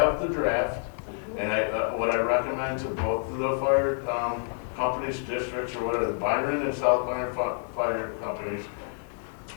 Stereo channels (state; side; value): silent; right; 59 dB below the other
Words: the draft, and what I recommend to both of the fire companies, districts, or whatever, the Byron and South Byron fire companies,